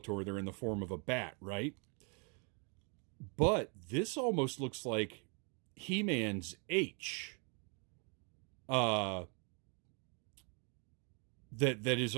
they're in the form of a bat, right? But this almost looks like He-Man's H. It's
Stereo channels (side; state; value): left; quieter; 36.2 dB